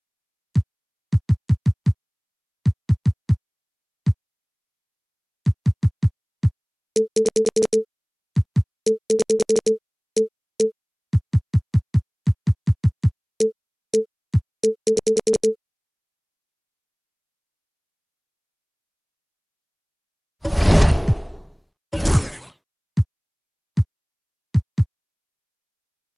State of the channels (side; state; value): both; identical; correlation 1.00